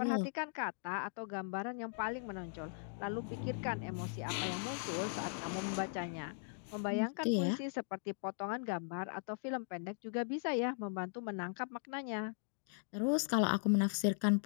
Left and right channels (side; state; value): right; silent; digital silence